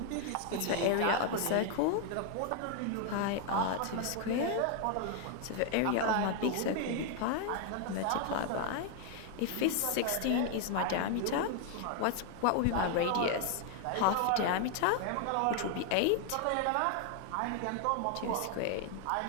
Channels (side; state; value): both; different; correlation 0.00